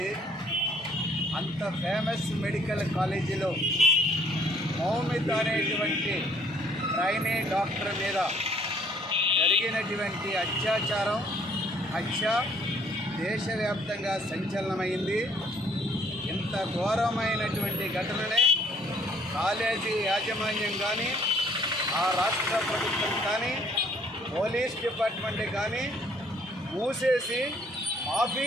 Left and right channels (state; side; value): normal; both; correlation 0.61